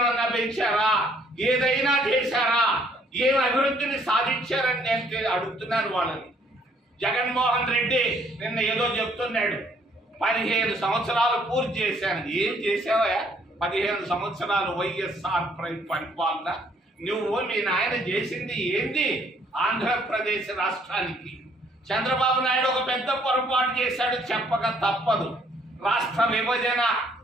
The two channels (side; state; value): both; normal; correlation 0.64